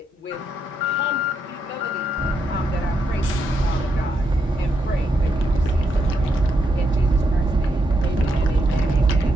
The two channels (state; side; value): normal; both; correlation 0.80